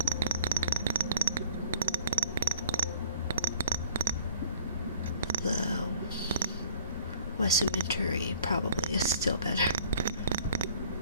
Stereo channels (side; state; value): both; inverted; correlation -0.55